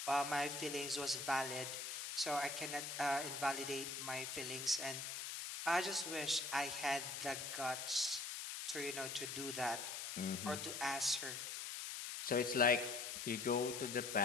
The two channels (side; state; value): left; noise; hiss, 5 dB below the sound